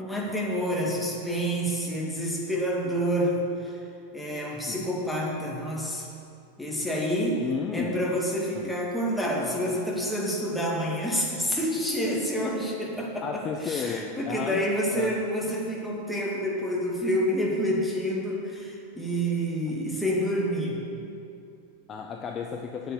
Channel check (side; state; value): both; normal; correlation 0.26